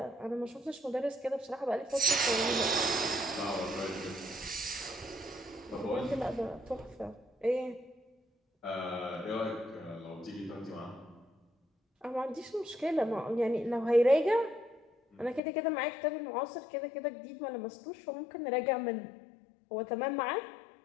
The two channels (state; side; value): drops out; right; at 15.4 s